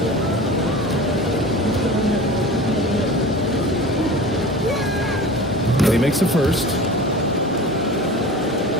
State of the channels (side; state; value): both; normal; correlation 0.36